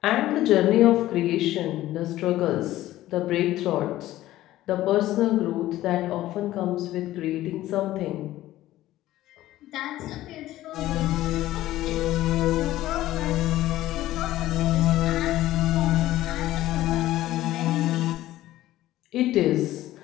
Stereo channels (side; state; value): right; quieter; 15.1 dB